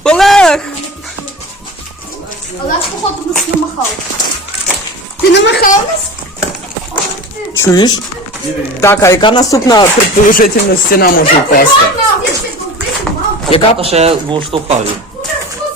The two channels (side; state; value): both; normal; correlation 0.34